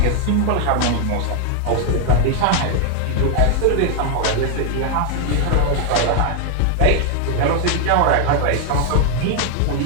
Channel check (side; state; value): both; different; correlation 0.00